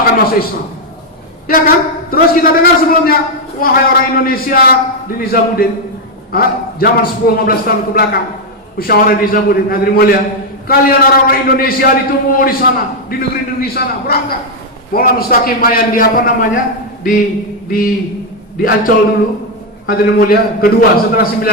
akan masuk Islam. Ya kan? Terus kita dengar sebelumnya, wahai orang Indonesia di Nizamuddin, zaman 10-15 tahun ke belakang, musyawarah Nizamuddin, hadirin mulia, kalian orang-orang Indonesia ditunggu di sana, di negeri-negeri sana, berangkat. Maulana Mustaqim Bayan di Ancol dulu, hadirin mulia, kedua setelah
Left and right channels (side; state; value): both; normal; correlation 0.01